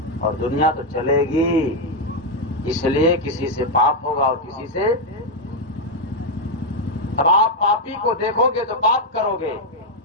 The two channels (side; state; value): both; normal; correlation 0.02